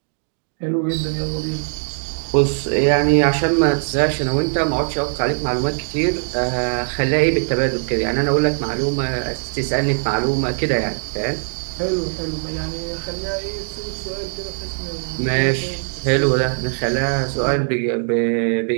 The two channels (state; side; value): silent; left; 65 dB below the other